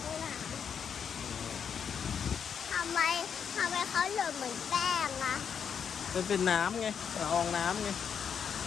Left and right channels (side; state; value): right; quieter; 7.3 dB